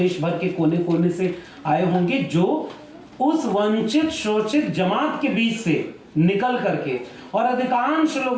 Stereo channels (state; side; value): identical; both; correlation 1.00